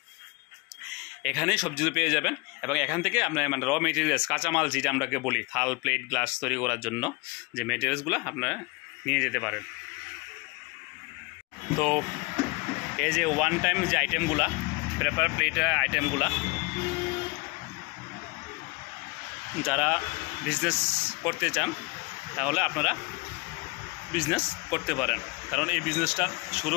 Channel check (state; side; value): quieter; right; 27.1 dB